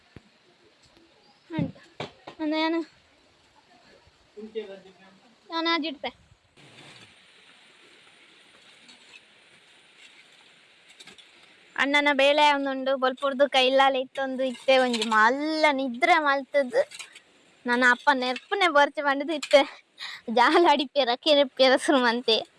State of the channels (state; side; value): identical; both; correlation 1.00